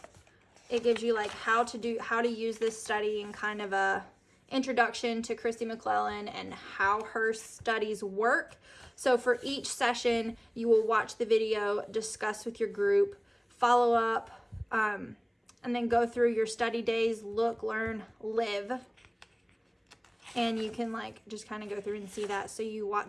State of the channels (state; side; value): identical; both; correlation 1.00